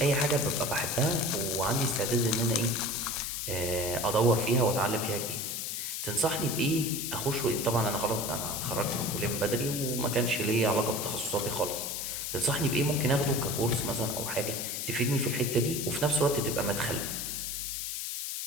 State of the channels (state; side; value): noise; left; hiss, 3 dB below the sound